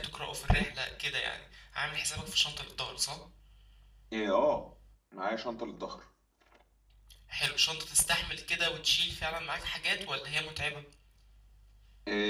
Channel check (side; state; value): both; identical; correlation 1.00